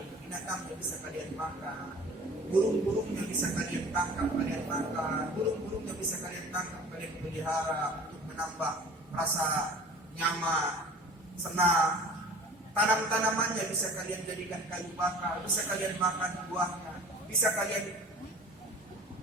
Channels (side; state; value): both; normal; correlation 0.44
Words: binatangnya bisa kalian makan. Burung-burungnya bisa kalian tangkap, kalian makan. Burung-burungnya bisa kalian tangkap, kalian pelihara untuk menambah rasa nyaman, senang. Tanam-tanamannya bisa kalian jadikan kayu bakar, bisa kalian makan buahnya, bisa kalian